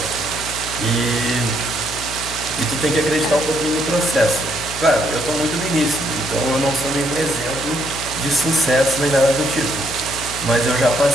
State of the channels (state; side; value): noise; left; hum, 12 dB below the sound